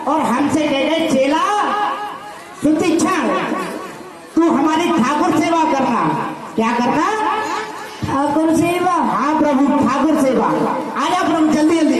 और हमसे कह गए, चेला सुतीक्षा तू हमारी ठाकुर सेवा करना। क्या करना? ठाकुर सेवा। हाँ प्रभु, ठाकुर सेवा। आ जाओ प्रभु, जल्दी जल्दी।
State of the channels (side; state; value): both; identical; correlation 1.00